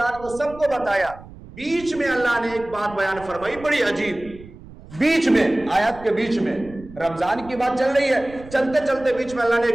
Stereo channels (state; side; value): noise; right; rumble, 18 dB below the sound